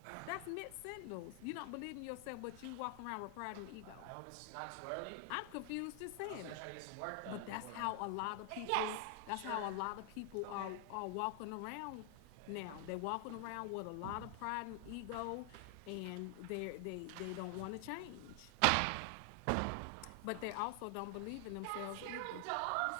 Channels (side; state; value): both; different; correlation 0.00